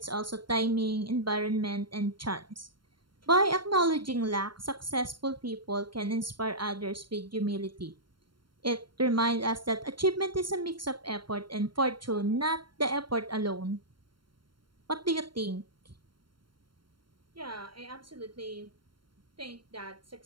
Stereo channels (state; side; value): late; left; 0.72 ms